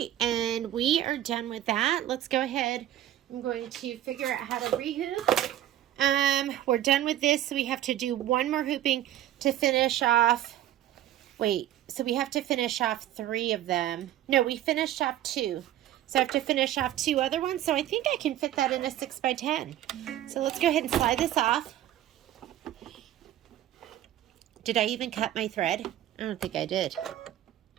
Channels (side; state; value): left; quieter; 12.6 dB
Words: and we are done with that. Let's go ahead. I'm going to figure out how to rehoop. We're done with this, so we have to do one more hooping to finish off. Wait, so we have to finish off 3 of them. No, we finished off 2. So I have to finish off 2 other ones. So I think I can fit that in a 6x10. So let's go ahead and slide this off. Did I even cut my thread? I don't think I did.